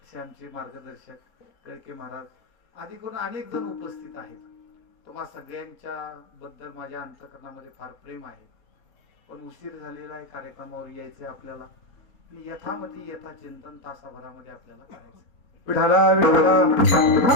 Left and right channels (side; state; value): right; late; 4.3 ms